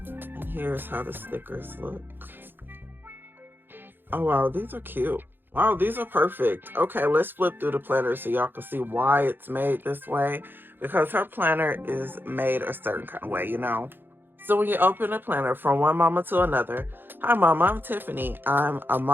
And here's how the stickers look. Oh wow, these are cute. Wow, these are perfect. Okay, let's flip through the planner so y'all can see why it's made this way. Because her planner is made a certain kind of way, you know. So when you open a planner from one mama to another, hi mama, I'm Tiffany. I'm a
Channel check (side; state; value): left; late; 0.098 ms